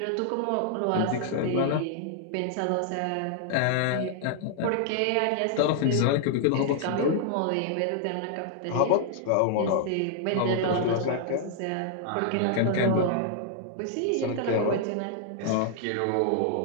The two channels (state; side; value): different; both; correlation 0.00